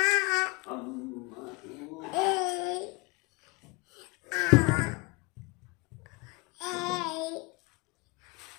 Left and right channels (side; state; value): right; quieter; 27.4 dB